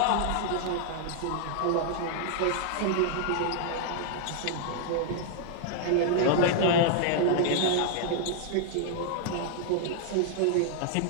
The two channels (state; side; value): different; both; correlation 0.00